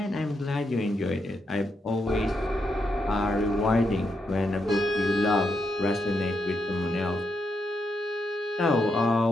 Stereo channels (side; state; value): both; normal; correlation 0.82